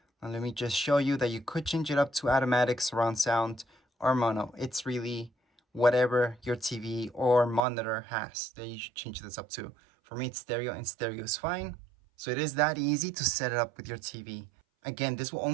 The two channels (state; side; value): drops out; left; at 7.6 s